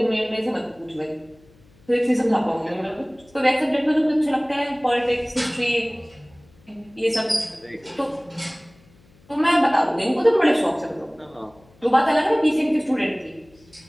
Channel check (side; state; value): left; noise; hum, 29 dB below the sound